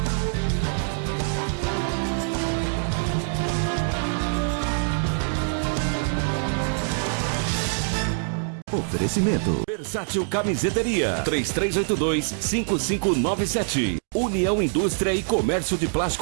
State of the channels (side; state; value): left; silent; digital silence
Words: Oferecimento Versátil Camiseteria 3382-5597. União Indústria e Comércio de